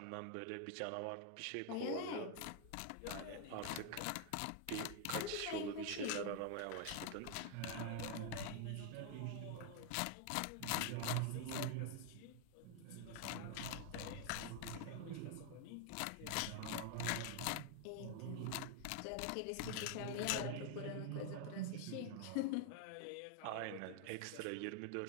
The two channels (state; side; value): different; both; correlation 0.00